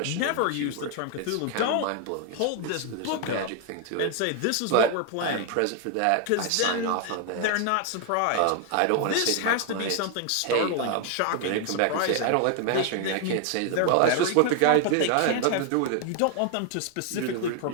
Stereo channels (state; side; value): different; both; correlation 0.00